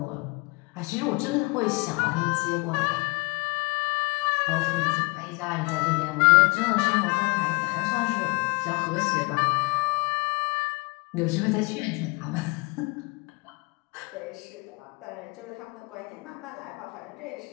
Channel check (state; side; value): quieter; right; 28.8 dB